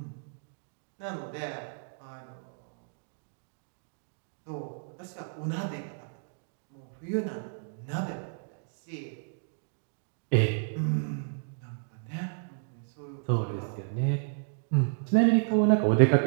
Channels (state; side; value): silent; left; digital silence